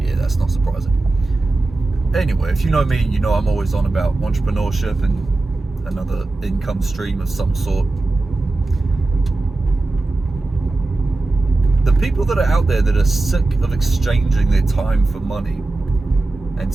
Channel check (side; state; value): left; quieter; 3.1 dB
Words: that's not surprising. Anyway, if you know me, you know I'm always on about entrepreneurship and another income stream of some sort. The people that are out there that are sick of exchanging their time for money and